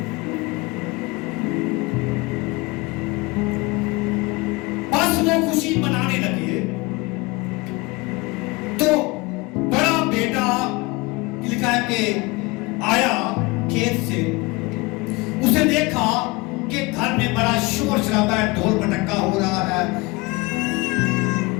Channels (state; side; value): quieter; right; 24.5 dB